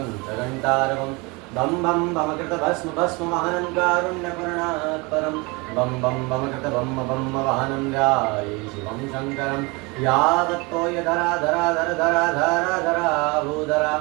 च घण्टारवं बं बं बमकृतभस्म भस्मवाहनं कारुण्यपूर्णात् परं बं बं बमकृतबं बं वाहनं ध्याये शिवं शङ्करं यावत्तोयधरा धरा धर धरा धरा धरा भूधरा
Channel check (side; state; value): left; quieter; 26.9 dB